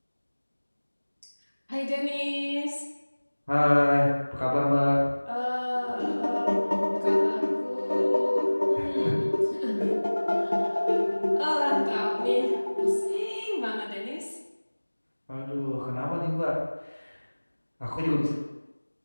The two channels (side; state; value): both; inverted; correlation -1.00